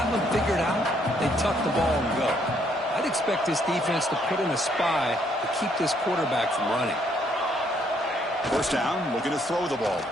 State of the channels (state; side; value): normal; both; correlation 0.69